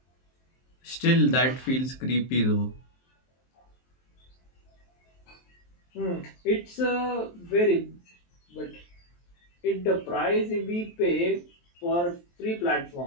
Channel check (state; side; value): late; right; 23 ms